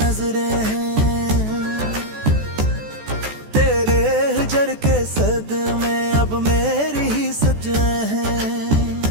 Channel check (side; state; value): left; late; 14 ms